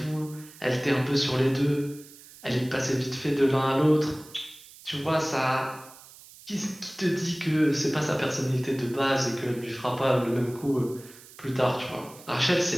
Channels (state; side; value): noise; right; hiss, 20 dB below the sound